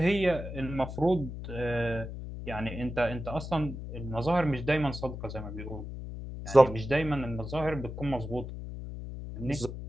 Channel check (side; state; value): left; noise; hum, 8 dB below the sound